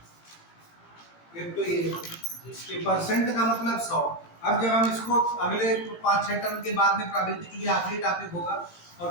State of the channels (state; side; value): late; right; 18 ms